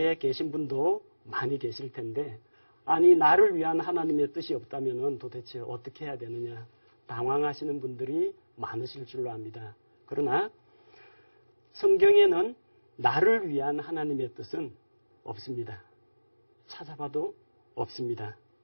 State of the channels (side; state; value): both; inverted; correlation -1.00